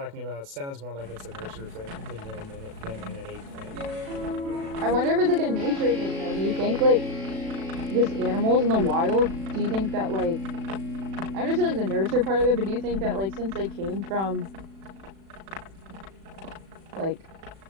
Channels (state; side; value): late; left; 36 ms